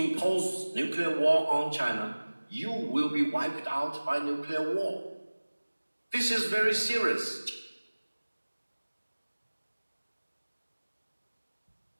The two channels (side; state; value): both; inverted; correlation -1.00